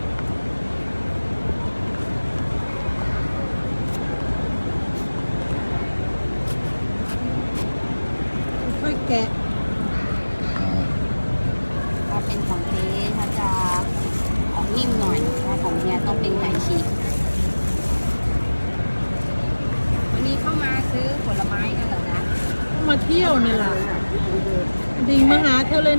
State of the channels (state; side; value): inverted; both; correlation -1.00